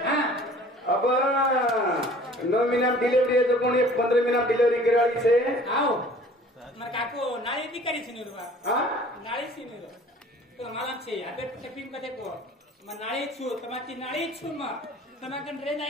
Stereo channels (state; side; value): normal; both; correlation 0.50